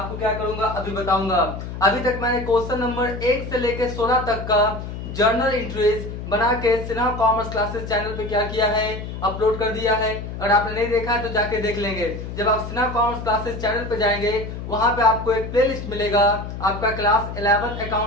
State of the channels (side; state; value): left; noise; hum, 8 dB below the sound